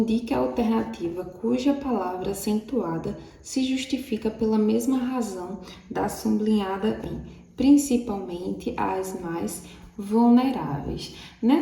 a alternativa cuja palavra acentuada se justifica pela mesma razão da sublinhada em, principalmente as mais vulneráveis.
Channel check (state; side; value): identical; both; correlation 1.00